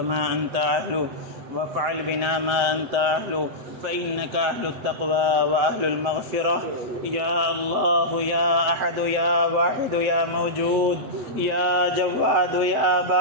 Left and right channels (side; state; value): left; late; 7.7 ms